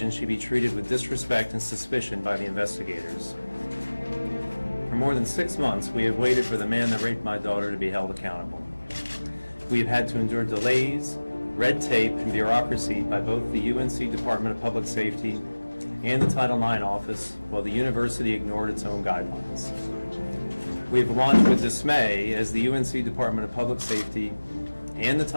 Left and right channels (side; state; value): both; inverted; correlation -1.00